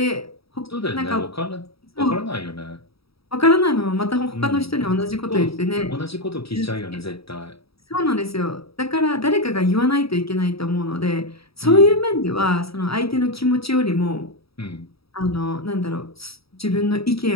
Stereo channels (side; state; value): right; late; 0.76 ms